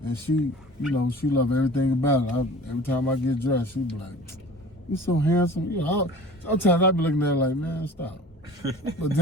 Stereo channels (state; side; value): normal; both; correlation 0.42